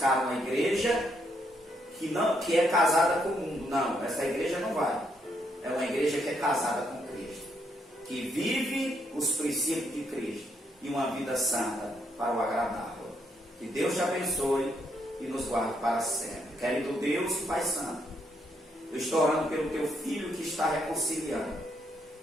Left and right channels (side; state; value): both; normal; correlation 0.75